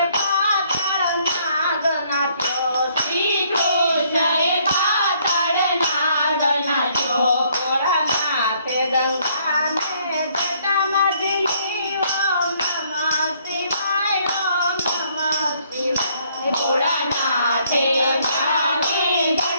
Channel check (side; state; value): both; inverted; correlation -0.66